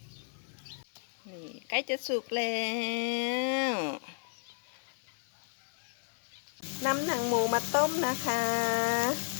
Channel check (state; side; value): silent; right; 56 dB below the other